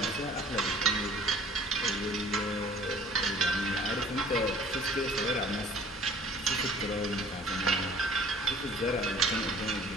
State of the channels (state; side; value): normal; both; correlation 0.52